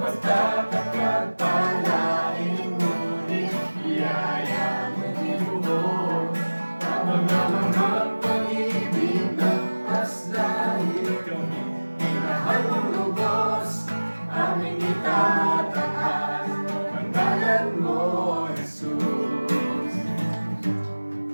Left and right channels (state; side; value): inverted; both; correlation -1.00